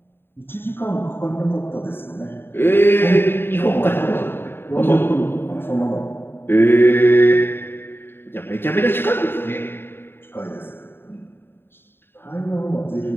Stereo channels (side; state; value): right; late; 0.11 ms